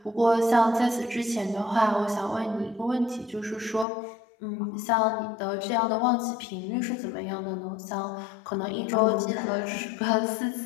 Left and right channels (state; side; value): drops out; right; at 3.9 s